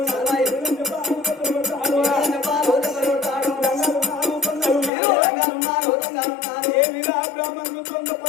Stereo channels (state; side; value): drops out; right; at 4.9 s